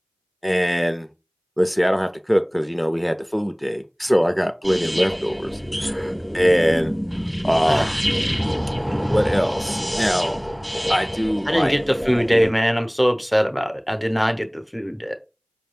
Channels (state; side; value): identical; both; correlation 1.00